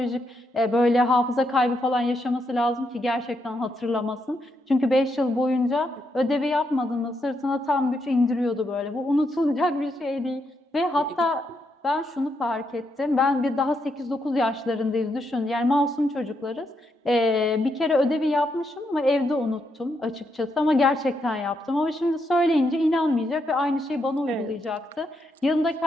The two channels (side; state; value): both; normal; correlation 0.79